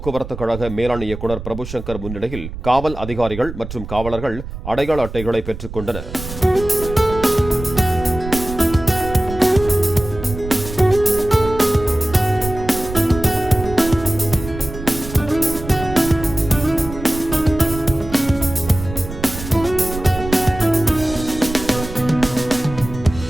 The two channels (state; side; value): noise; right; rumble, 10 dB below the sound